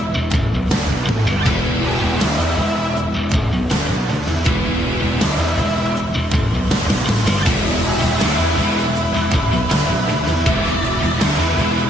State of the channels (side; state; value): both; normal; correlation 0.74